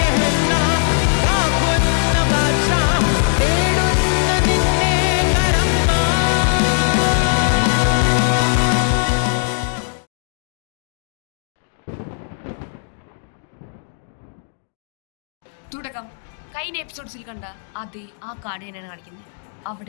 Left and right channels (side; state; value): right; silent; digital silence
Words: തുടക്കം കഴിഞ്ഞ എപ്പിസോഡ്സിൽ കണ്ട അതേ ആ കാർഡ് തന്നെയാണ് കാണിക്കുന്നത്.